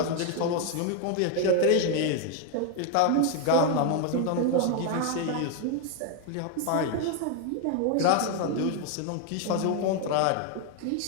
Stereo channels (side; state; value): both; different; correlation 0.01